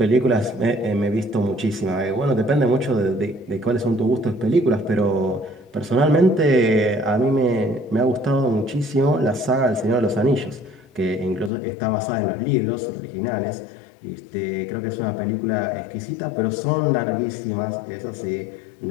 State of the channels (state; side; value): drops out; right; at 11.5 s